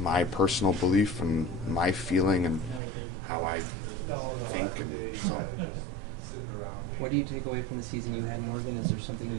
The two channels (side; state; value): left; drops out; at 2.8 s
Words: my personal belief and my feeling and how I think, and so. What do you take away from the season you had, Morgan? Is there something